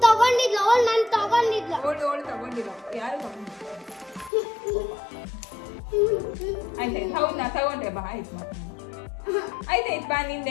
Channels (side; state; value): right; drops out; at 4.3 s